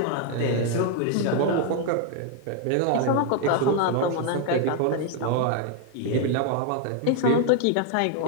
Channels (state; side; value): different; both; correlation 0.00